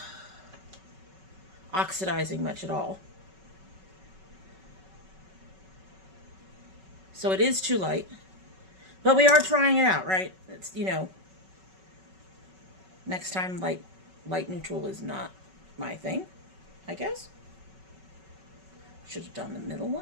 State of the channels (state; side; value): late; left; 5.3 ms